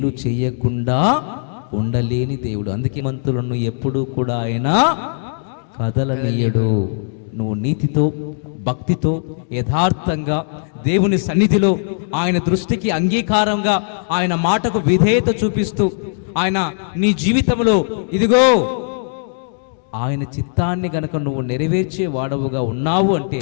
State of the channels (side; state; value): right; silent; digital silence